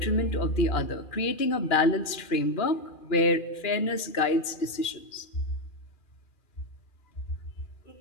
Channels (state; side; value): late; right; 2.4 ms